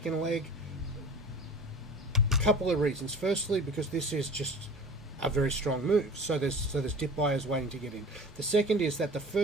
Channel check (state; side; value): normal; both; correlation 0.40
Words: leg? A couple of reasons. Firstly, because this is just a very strong move. So there's dip buyers waiting to get in. The second is that the